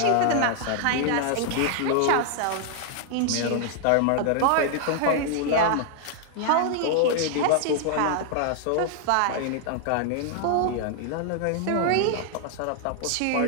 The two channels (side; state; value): both; different; correlation 0.00